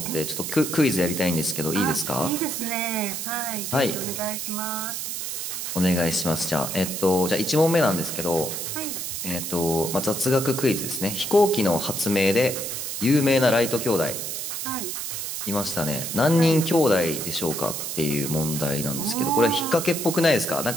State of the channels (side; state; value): right; noise; hiss, 4 dB below the sound